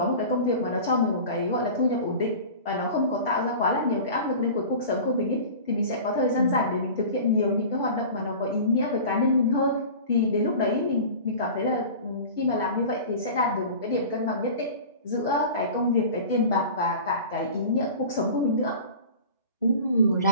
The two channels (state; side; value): inverted; both; correlation -0.37